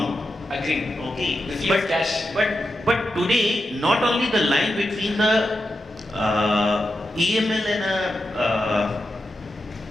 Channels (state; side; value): normal; both; correlation 0.88